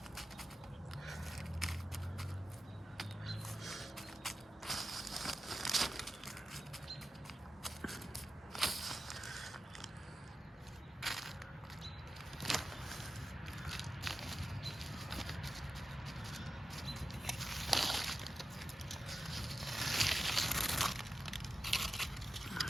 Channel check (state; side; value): normal; both; correlation 0.92